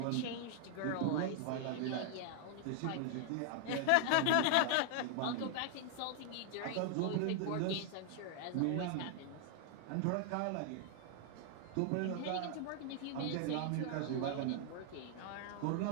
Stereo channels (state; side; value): different; both; correlation 0.00